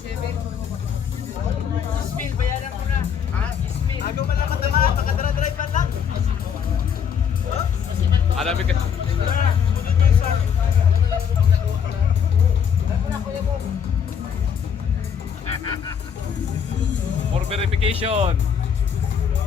Alami ka. For verification.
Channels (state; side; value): quieter; right; 7.5 dB